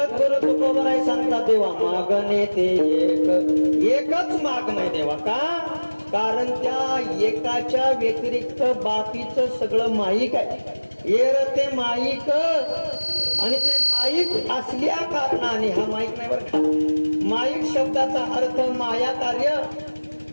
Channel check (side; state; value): both; inverted; correlation -1.00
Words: तुकोबाराय सांगतात देवा मागणे ते एकच मागणे देवा. का? कारण त्या एकाच्या व्यतिरिक्त बाकीचं सगळं माईक आहे. येर ते माईक आणि ते माईक असल्या कारणाने, हा माईक नाही बरं का, माईक शब्दाचा अर्थ माया कार्य.